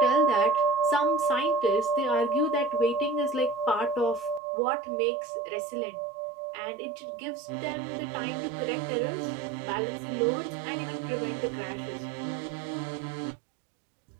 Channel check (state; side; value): drops out; left; at 4.4 s